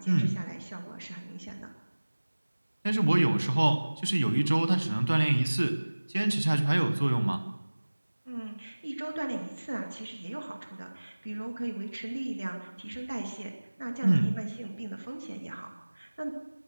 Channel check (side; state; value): both; inverted; correlation -1.00